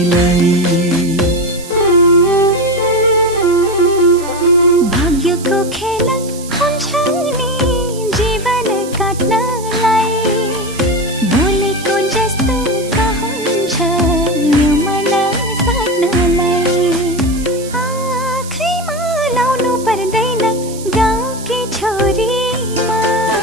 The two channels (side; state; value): right; noise; hiss, 15 dB below the sound